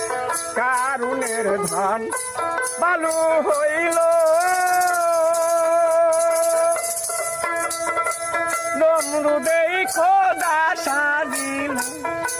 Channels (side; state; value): both; identical; correlation 1.00